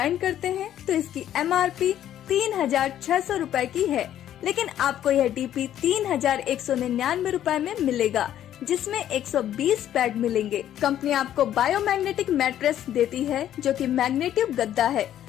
करते हैं तो इसकी MRP 3600 रूपए की है, लेकिन आपको यह DP 3199 रूपए में मिलेगा, जिसमें 120 पैड मिलेंगे। कंपनी आपको बायोमैग्नेटिक मैट्रेस देती है जो कि मैग्नेटिव गद्दा है।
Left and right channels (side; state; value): right; quieter; 11.3 dB